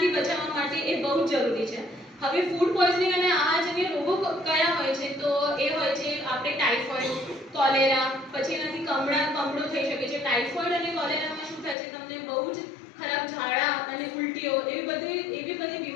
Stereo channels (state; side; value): drops out; right; at 11.8 s